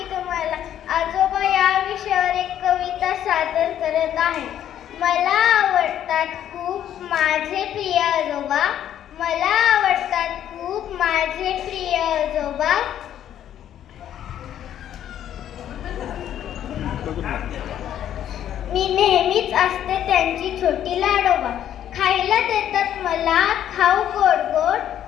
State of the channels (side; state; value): right; quieter; 10.7 dB